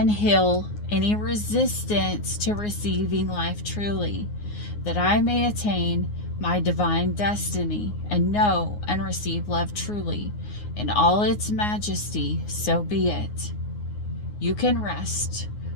heal any resistance to receiving life truly, that I may attain my divine destiny and know and receive love truly in all its majesty, so be it. You can rest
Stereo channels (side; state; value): right; late; 9.6 ms